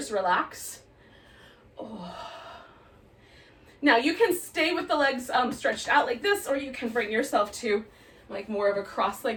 relax. Oh. Now you can stay with the legs stretched out like this, or you can bring yourself to like more of a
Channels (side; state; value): both; identical; correlation 1.00